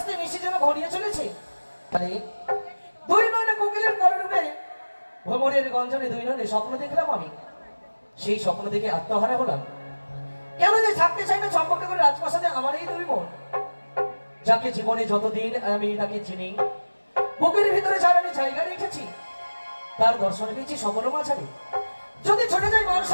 নিশি যেন ঘনিয়ে চলেছে। দুই নয়নে কোকিলের কলরূপে ভ্রমরের গঞ্জনে দুই নয়নে স্বপ্ন দেখলাম আমি। সেই স্বপ্ন দেখে আত্মহারা হলাম। কেন যে থাকতে চাই না চম্পকনগরের রাজপ্রাসাদে আমার এই দুই মন, যাকে জীবনে যতদিন আমি তাকে চিনি, বুকের ভিতরে যার আমি জায়গা রেখেছি, তার দর্শন পেয়েছি সকল মাঝারে। যদি ছুটে যাই মান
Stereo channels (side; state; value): both; inverted; correlation -1.00